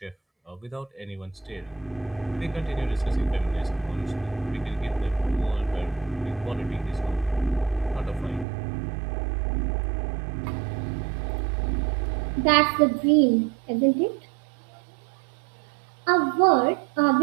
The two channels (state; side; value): drops out; left; at 8.5 s